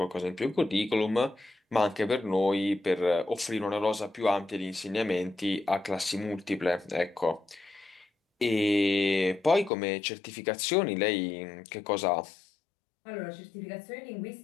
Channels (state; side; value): drops out; right; at 9.7 s